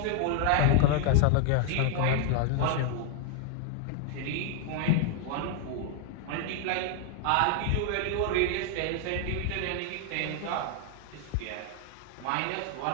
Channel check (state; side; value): different; both; correlation 0.00